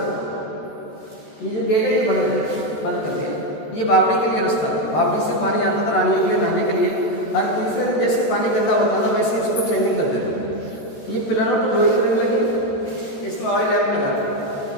ये जो गेट है ये बंद कर दिया। ये बावड़ी के लिए रास्ता है, बावड़ी से पानी आता था रानियों के लिए नहाने के लिए, हर तीसरे जैसे पानी गंदा होता था वैसे इसको चेंजिंग कर देते थे। ये पिलरों को लोहे की रंग लगी, इसमें ऑयल लैम्प लगा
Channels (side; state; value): right; late; 14 ms